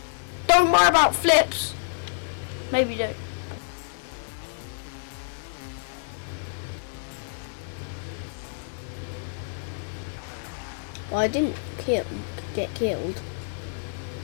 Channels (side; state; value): right; silent; digital silence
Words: Don't worry about flips. Maybe do. Well, I didn't get killed.